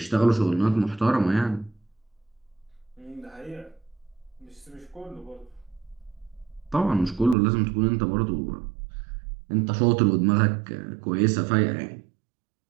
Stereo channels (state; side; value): drops out; left; at 7.4 s